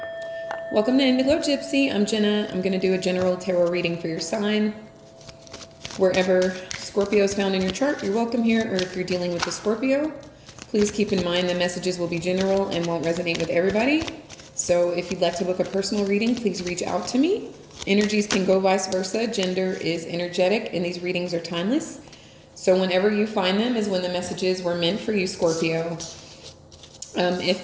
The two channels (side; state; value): both; identical; correlation 1.00